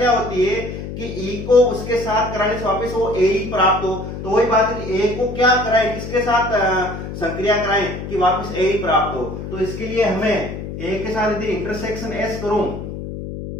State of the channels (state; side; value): noise; left; hum, 8 dB below the sound